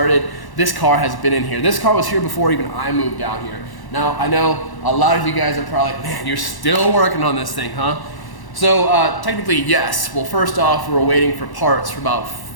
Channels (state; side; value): late; right; 1.1 ms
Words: this car has been in here. This car was here before even I moved down here. Now, I know a lot of you guys are probably like, man, you're still working on this thing, huh? So technically, yes. Well, first off, we were waiting for parts for about